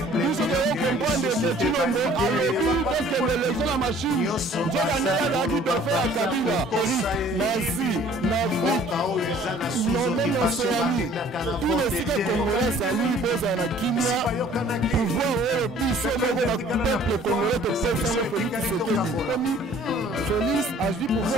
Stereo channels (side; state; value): both; normal; correlation 0.54